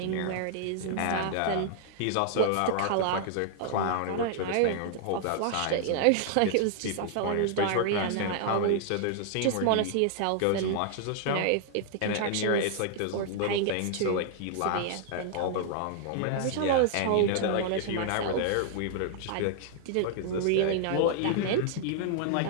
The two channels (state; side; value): different; both; correlation 0.00